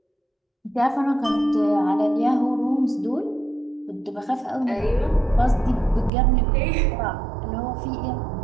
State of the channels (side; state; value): left; drops out; at 6.1 s